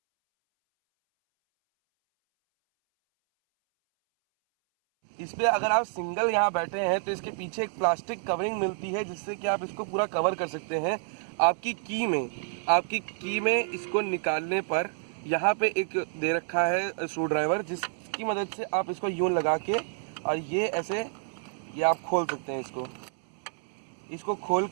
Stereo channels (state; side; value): silent; left; 59 dB below the other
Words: इस पे अगर आप सिंगल यहाँ बैठे हैं तो इसके पीछे एक प्लास्टिक कवरिंग मिलती है, जिससे कि आप इसको पूरा कवर कर सकते हैं। आपकी की में इसको निकालने पर यहाँ पे एक दे रखा है स्क्रू ड्राइवर, जिसकी मदद से आप इसको यूं लगा के और ये ऐसे ये आप खोल सकते हैं। इसको खोल